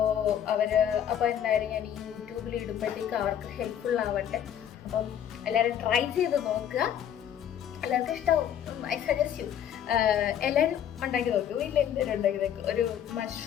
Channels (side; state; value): right; quieter; 9.6 dB